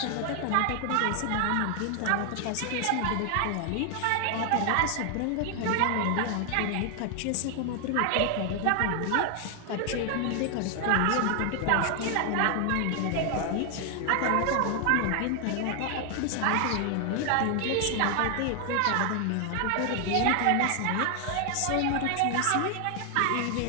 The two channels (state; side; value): different; both; correlation 0.00